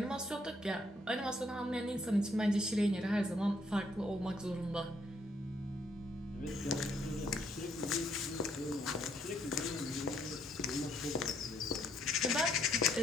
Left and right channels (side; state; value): both; normal; correlation 0.70